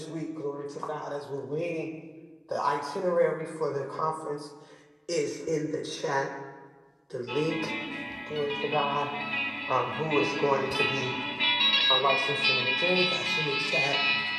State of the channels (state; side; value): identical; both; correlation 1.00